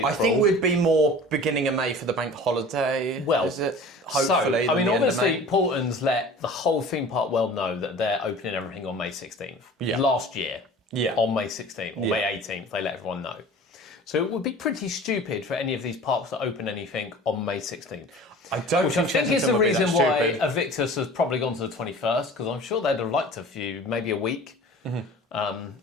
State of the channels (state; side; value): normal; both; correlation 0.42